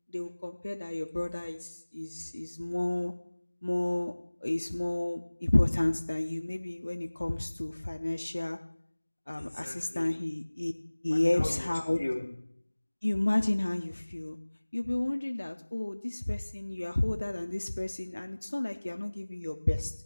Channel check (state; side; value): inverted; both; correlation -1.00